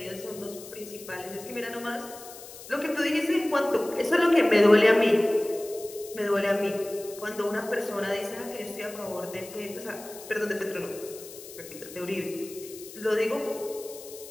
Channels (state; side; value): noise; left; hiss, 16 dB below the sound